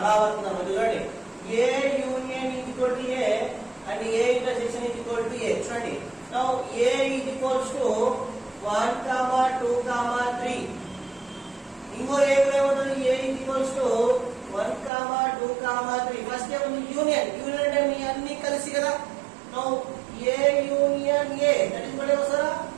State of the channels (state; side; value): drops out; left; at 14.9 s